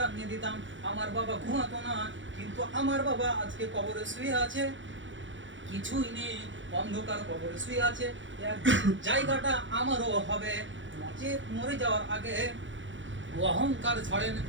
দিতাম, আমার বাবা ঘুমাতো না। কিন্তু আমার বাবা আজকে কবরে শুয়ে আছে, কিছুই নেই, অন্ধকার কবরে শুয়ে আছে। একদিন জায়গাটা আমারও হবে, নচেত মরে যাওয়ার আগে অহংকার ছাড়েন,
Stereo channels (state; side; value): late; left; 0.55 ms